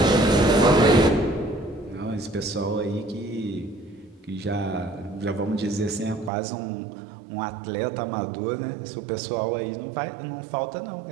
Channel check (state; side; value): drops out; left; at 6.3 s